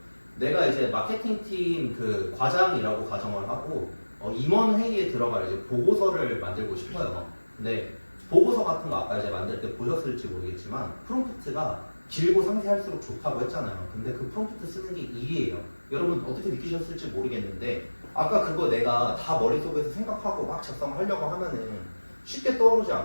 내가 이제 마케팅팀 그 과장이라고 가정을 하고 임원 회의에 들어갈 이제 보고서를 만들고 싶어요. 근데 보고서 같은 거 아까 이제 만들 때 보셨을지 모르겠지만 프롬프트가 길고 상세할수록 좋다고 했잖아요. 근데 그 프롬프트 쓰는 게 일이에요. 여러분 어떻게 느끼셨을지 모르겠는데 아까 그거 내가 다 머릿속에서 생각하고 막 작성하려고 하면은 쉽게 떠오르지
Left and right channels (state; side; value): inverted; both; correlation -1.00